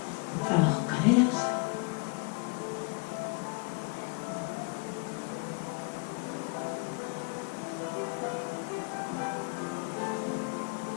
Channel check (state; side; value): quieter; right; 31.4 dB